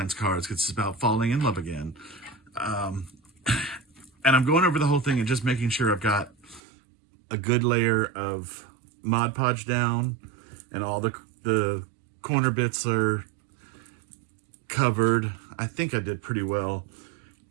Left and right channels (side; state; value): left; drops out; at 6.6 s